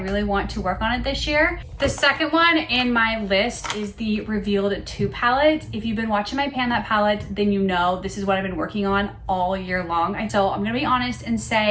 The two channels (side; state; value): both; identical; correlation 1.00